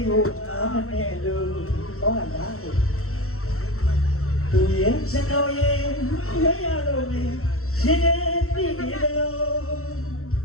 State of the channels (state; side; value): late; right; 0.63 ms